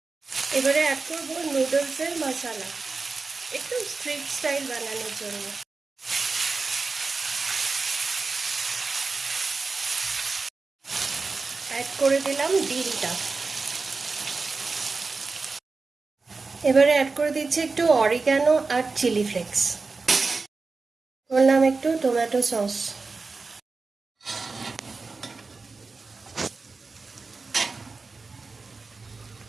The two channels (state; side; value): quieter; left; 4.1 dB